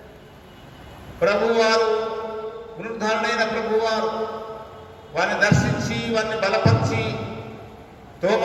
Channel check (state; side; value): identical; both; correlation 1.00